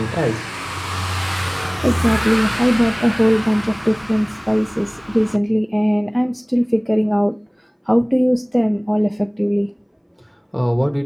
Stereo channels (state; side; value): identical; both; correlation 1.00